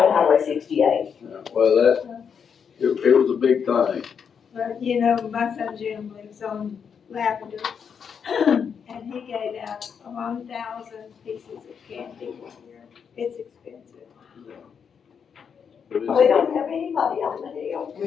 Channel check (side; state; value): right; quieter; 6.9 dB